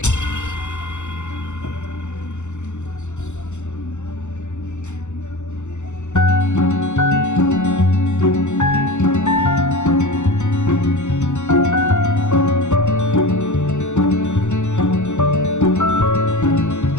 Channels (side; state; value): right; late; 0.83 ms